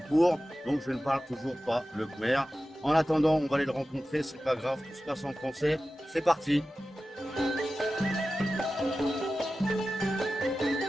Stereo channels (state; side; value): normal; both; correlation 0.94